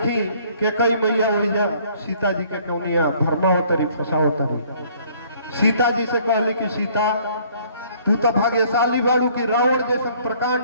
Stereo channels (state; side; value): inverted; both; correlation -0.58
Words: के कई मैया ओइजा सीता जी के कौनिया धर्मावतरी फसावतरी। सीता जी से कहली कि सीता तू तो भाग्यशाली बाड़ू कि रावण जैसा